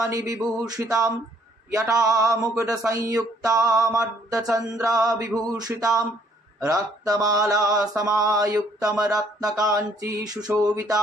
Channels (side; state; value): both; normal; correlation 0.64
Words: বিভূষিতাম यटा मुकुट संयुक्तामर्धचन्द्र विभूषितां रक्तमाला समायुक्तं रत्नकाञ्ची